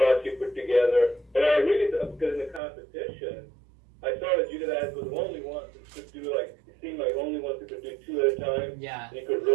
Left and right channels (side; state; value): left; drops out; at 2.6 s